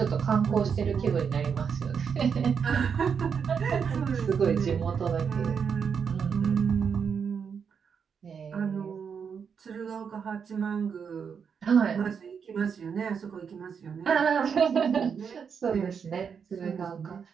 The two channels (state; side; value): quieter; left; 6.6 dB